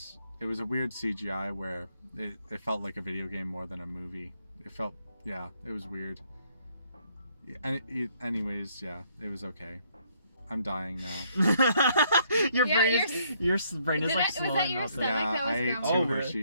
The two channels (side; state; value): both; inverted; correlation -0.68